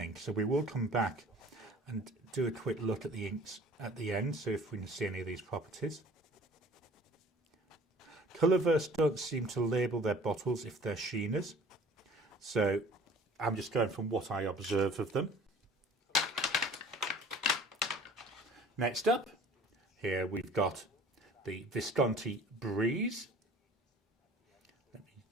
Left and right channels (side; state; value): both; normal; correlation 0.49